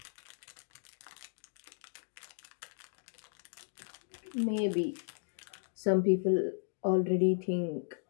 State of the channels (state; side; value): silent; right; digital silence